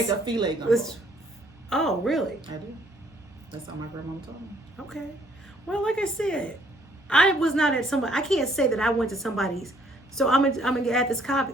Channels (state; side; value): normal; both; correlation 0.64